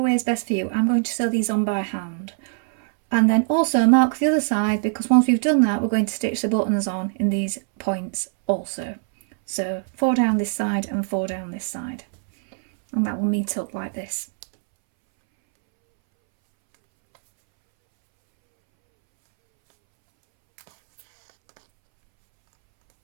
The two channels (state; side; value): silent; left; 64 dB below the other